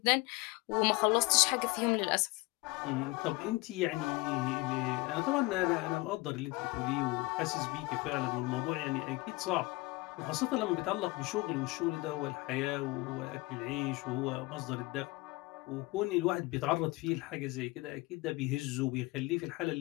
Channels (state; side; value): quieter; right; 23.0 dB